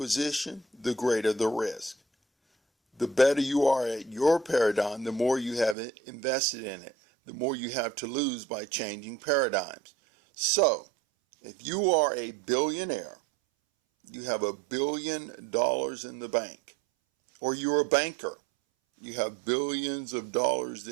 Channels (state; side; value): drops out; left; at 5.8 s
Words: the greater the risk. The better you are at your paradigm, the more you have invested in it, the more you have to lose by changing paradigms. So, if you are a billionaire, you have $1 billion in the bank, or you're a banker, you have billions of dollars